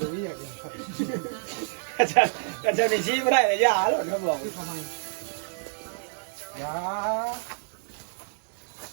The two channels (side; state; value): left; silent; digital silence